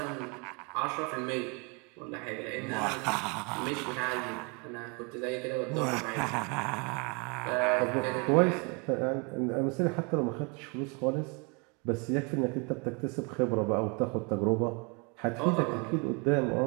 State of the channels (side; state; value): left; quieter; 32.7 dB